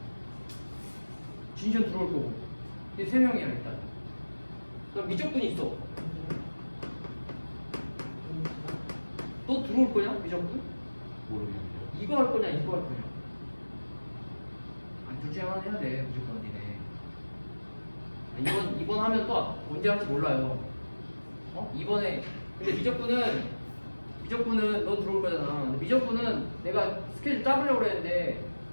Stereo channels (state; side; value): inverted; both; correlation -1.00